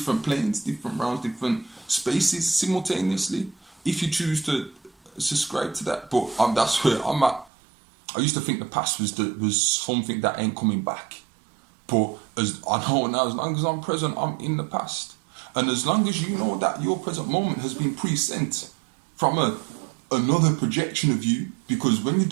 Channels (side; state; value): left; drops out; at 7.5 s